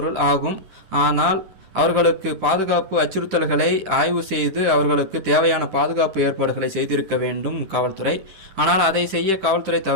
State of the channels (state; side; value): late; left; 10 ms